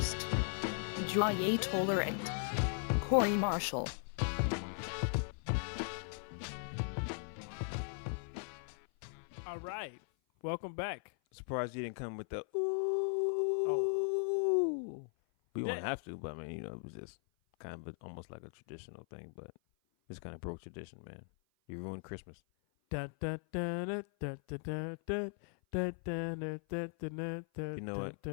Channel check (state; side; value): silent; right; 52 dB below the other